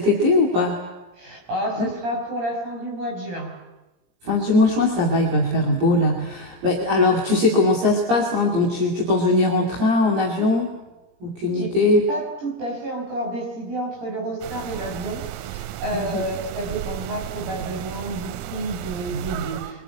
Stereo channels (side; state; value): left; late; 17 ms